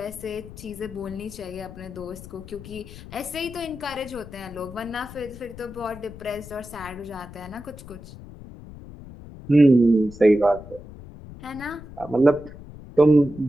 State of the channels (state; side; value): noise; left; rumble, 15 dB below the sound